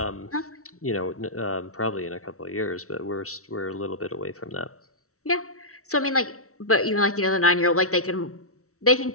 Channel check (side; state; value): right; late; 0.64 ms